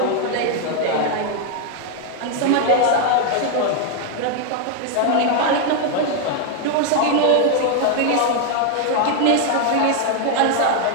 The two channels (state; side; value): different; both; correlation 0.00